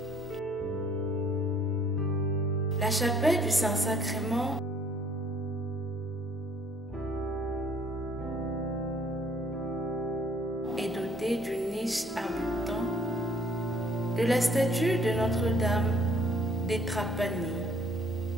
La chapelle du Saint-Sacrement est dotée d'une niche abritant de la statue de Notre-Dame des Trapani,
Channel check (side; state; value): both; normal; correlation 0.60